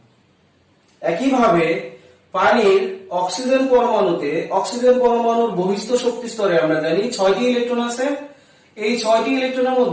একইভাবে পানির অক্সিজেন পরমাণুতে অক্সিজেন পরমাণুর বহিস্থ শক্তি স্তরে আমরা জানি 6টি ইলেকট্রন আছে। এই 6টি ইলেকট্রনের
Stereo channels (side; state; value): both; identical; correlation 1.00